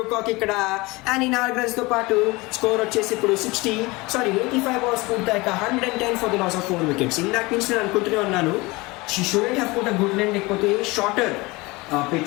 ఇక్కడ. అండ్ ఈ 4 runs తో పాటు స్కోర్ వచ్చేసి ఇప్పుడు 85 balls పూర్తయ్యాక 110 for the loss of 4 wickets. ఇందాక నుంచి నేను అనుకుంటూనే ఉన్నాను she shouldn't have put a good line, లేకపోతే షార్టర్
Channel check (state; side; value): quieter; right; 23.4 dB